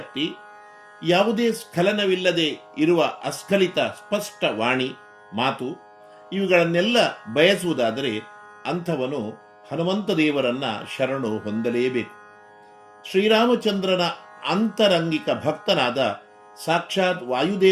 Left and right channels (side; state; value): both; identical; correlation 1.00